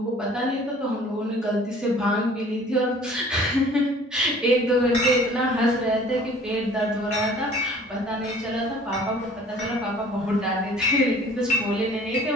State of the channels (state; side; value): normal; both; correlation 0.51